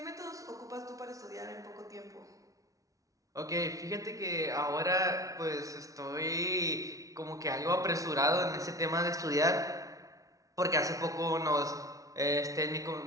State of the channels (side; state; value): left; late; 0.17 ms